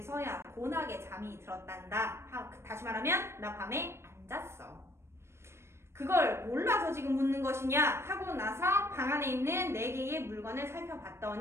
곤하게 잠이 들었단다. 다시 말하면 나 밤에 안 잤어. 그걸 몰라서 지금 묻는 것이냐 하고 나서 방 안에 있는 4개의 물건을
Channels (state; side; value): late; left; 0.13 ms